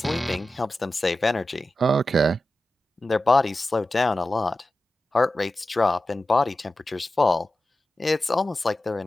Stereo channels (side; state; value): both; normal; correlation 0.93